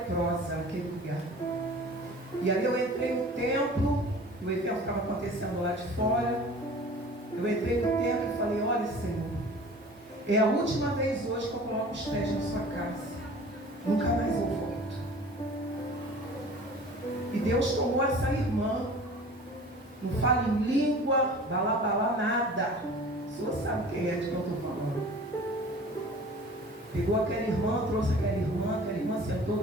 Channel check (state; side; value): normal; both; correlation 0.43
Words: naquele lugar. E ali eu entrei no templo, o evento estava acontecendo lá de fora. Eu entrei no templo e falei: olha, Senhor, é a última vez hoje que eu coloco os pés na sua casa. Nunca mais eu volto. E Deus tomou essa irmã. Não fala em língua, balá, nada. O senhor sabe quem é de que eu estou falando. Pegou aquela irmã, trouxe aquela irmã sentou